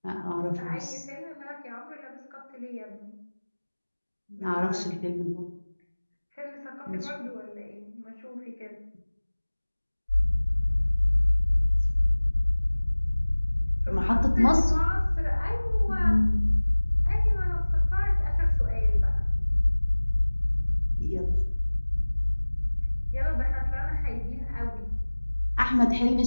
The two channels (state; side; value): inverted; both; correlation -1.00